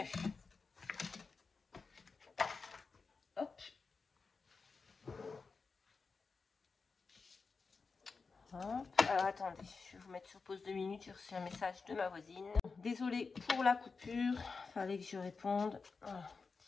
Hop. Hop. Alors attendez, je vais vous mettre sur pause 2 minutes, j'ai reçu un message de ma voisine. Désolée pour la coupure, fallait que je réponde. Voilà.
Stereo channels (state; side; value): quieter; right; 4.6 dB